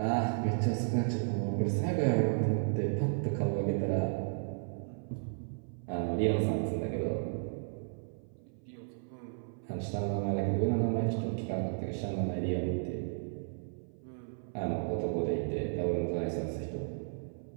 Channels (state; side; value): silent; left; 55 dB below the other